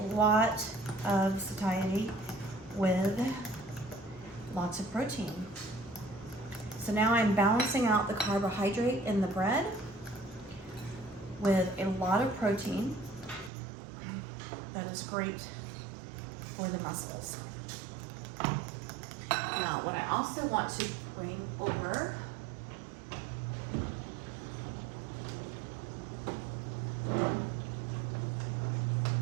lot of satiety with lots of protein. So now I'm balancing out the carbohydrate in the bread with a lot of protein that is great for the muscles. Now, what I also want to bring over.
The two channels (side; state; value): left; drops out; at 13.5 s